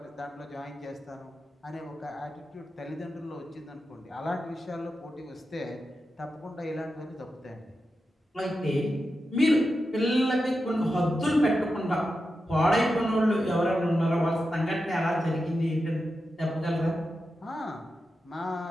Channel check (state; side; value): normal; both; correlation 0.90